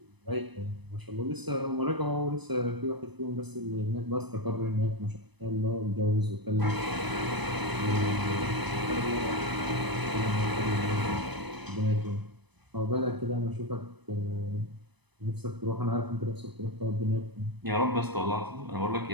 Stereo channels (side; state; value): left; late; 1.0 ms